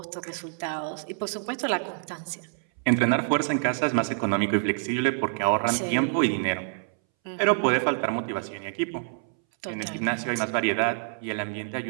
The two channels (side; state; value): left; silent; 60 dB below the other